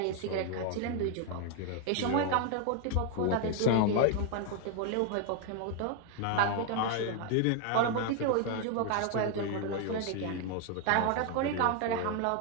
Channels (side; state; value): both; different; correlation 0.01